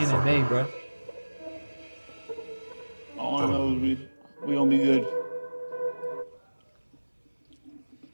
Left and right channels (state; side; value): inverted; both; correlation -1.00